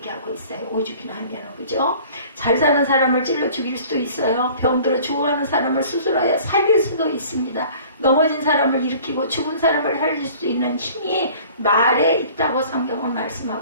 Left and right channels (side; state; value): both; inverted; correlation -0.49